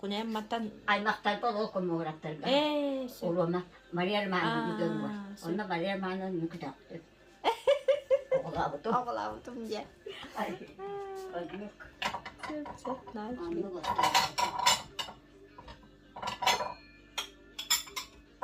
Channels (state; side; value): identical; both; correlation 1.00